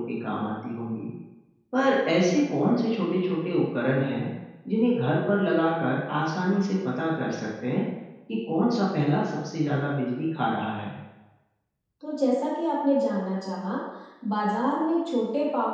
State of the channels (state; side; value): identical; both; correlation 1.00